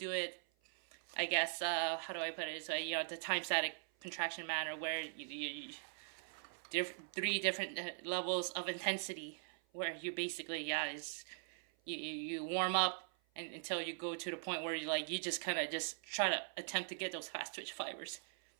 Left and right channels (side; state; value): left; silent; 50 dB below the other